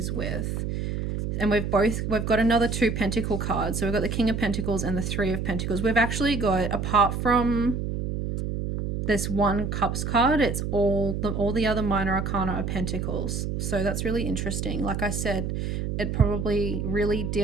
with? And we've got another 2 Pentacle cards. So we've got the King of Pentacles and the 3 of Pentacles. We've actually got, apart from this 1 Cups card, it's all the other minor arcana are Pentacles. So that's really interesting. Like I said, it probably really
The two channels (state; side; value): noise; right; hum, 2 dB below the sound